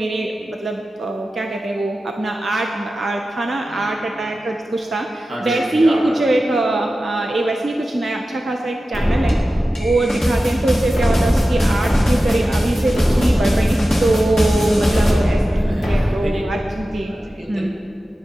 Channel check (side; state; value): both; normal; correlation 0.94